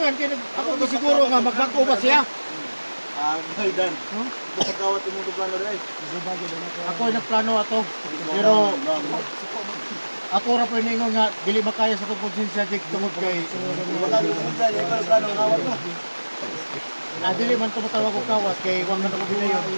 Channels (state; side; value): inverted; both; correlation -1.00